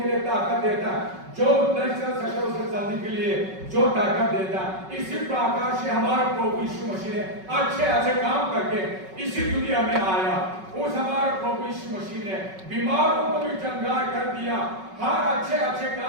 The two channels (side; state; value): left; late; 5.3 ms